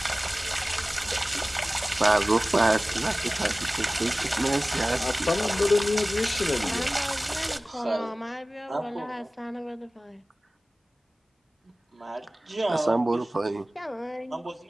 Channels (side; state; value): both; normal; correlation 0.97